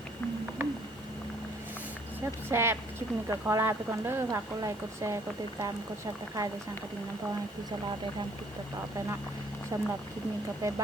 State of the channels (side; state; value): both; normal; correlation 0.61